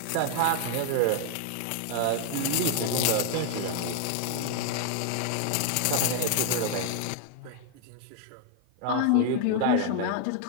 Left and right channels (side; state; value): both; different; correlation 0.00